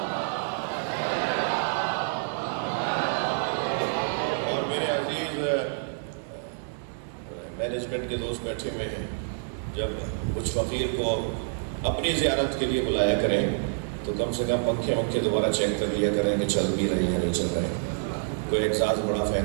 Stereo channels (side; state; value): left; silent; digital silence